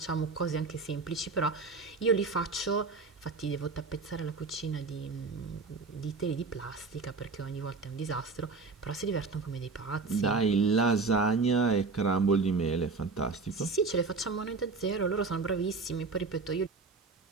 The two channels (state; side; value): quieter; left; 4.2 dB